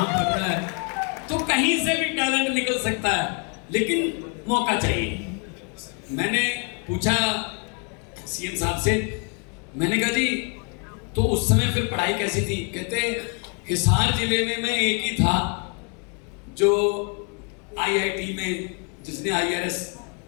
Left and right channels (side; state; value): right; quieter; 36.4 dB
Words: पढ़ रहा है, तो कहीं से भी टैलेंट निकल सकता है, लेकिन मौका चाहिए। मैंने पूछा CM साहब से, मैंने कहा जी तो उस समय फिर पढ़ाई कैसी थी? कहते हिसार जिले में मैं एक ही था जो IIT में जिसने IRS